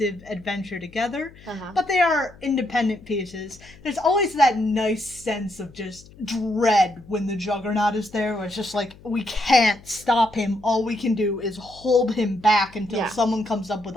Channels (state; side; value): noise; left; hum, 23 dB below the sound